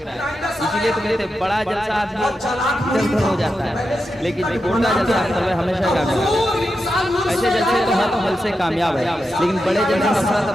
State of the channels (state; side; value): normal; both; correlation 0.88